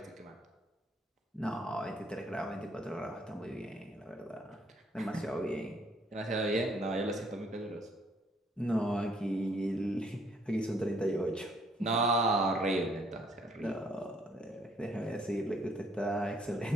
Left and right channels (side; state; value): both; normal; correlation 0.67